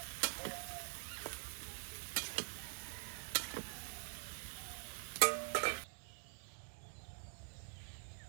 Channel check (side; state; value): left; silent; digital silence